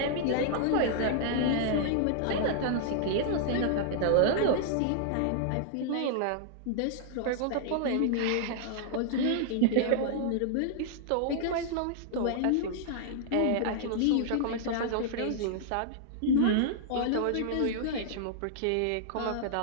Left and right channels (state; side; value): different; both; correlation -0.01